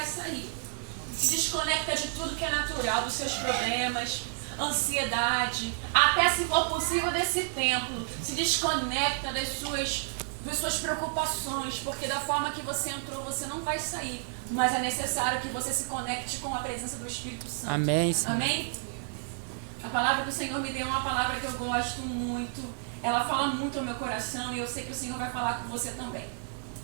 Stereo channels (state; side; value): silent; left; digital silence